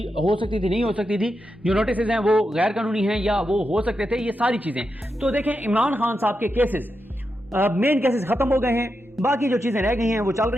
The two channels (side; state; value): both; normal; correlation 0.87